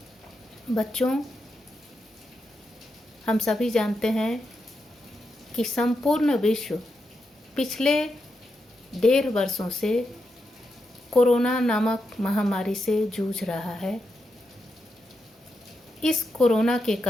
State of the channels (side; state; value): both; normal; correlation 0.85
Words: बच्चों, हम सभी जानते हैं कि संपूर्ण विश्व पिछले 1.5 वर्षों से कोरोना नामक महामारी से जूझ रहा है। इस कोरोना के